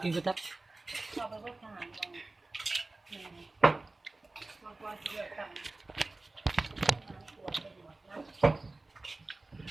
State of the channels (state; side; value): quieter; left; 3.1 dB